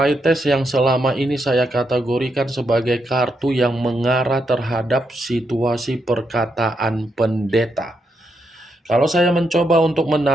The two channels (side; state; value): both; normal; correlation 0.81